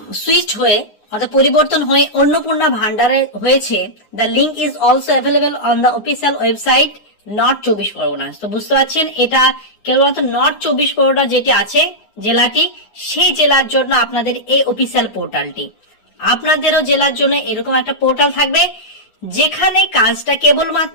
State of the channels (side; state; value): right; late; 9.6 ms